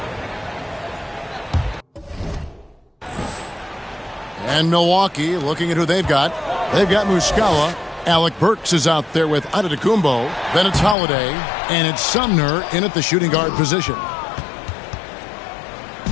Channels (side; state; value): right; drops out; at 11.0 s